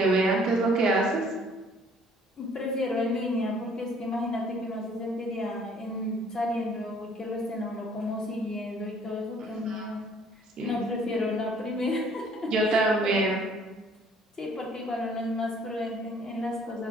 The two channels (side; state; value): both; normal; correlation 0.58